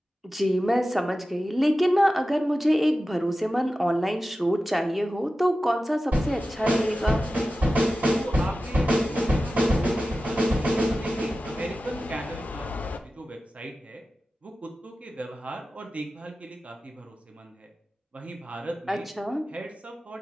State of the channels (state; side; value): normal; both; correlation 0.94